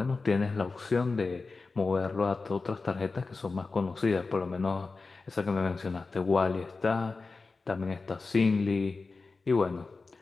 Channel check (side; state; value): right; quieter; 4.0 dB